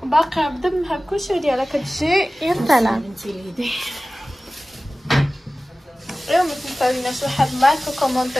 باقي بدمها بكلشي ديالها كتجي يا سلام. انت ليدي اليوم ما تنساوناش واحد لايك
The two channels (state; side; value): normal; both; correlation 0.97